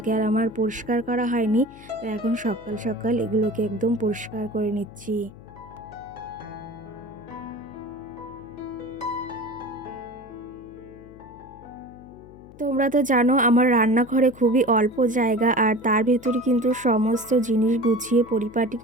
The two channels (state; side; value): noise; left; hum, 20 dB below the sound